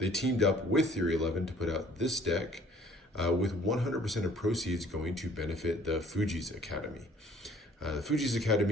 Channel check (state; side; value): normal; both; correlation 0.56